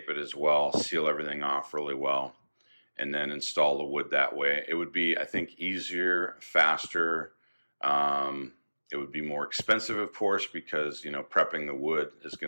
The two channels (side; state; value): both; inverted; correlation -1.00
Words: it as well, seal everything off really well, and then install the wood that way. It would be, I think, easier, faster. It would be more expensive, of course, because prepping the wood is